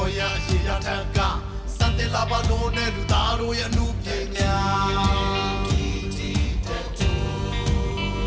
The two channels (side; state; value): both; identical; correlation 1.00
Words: ်ရအရှိရထက်ကစံတင်လာပါလို့နဲ့လူသားတို့ရဲ့အမှုပညာ